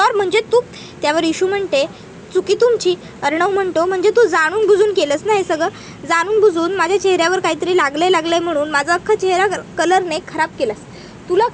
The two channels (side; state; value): both; identical; correlation 1.00